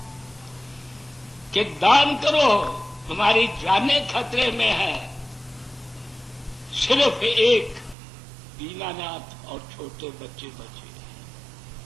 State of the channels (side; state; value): left; drops out; at 8.0 s